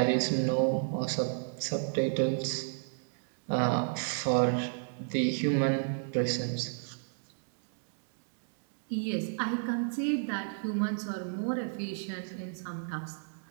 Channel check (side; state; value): left; silent; digital silence